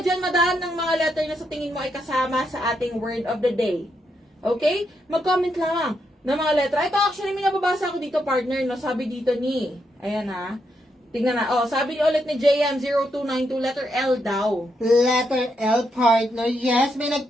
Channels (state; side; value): normal; both; correlation 0.80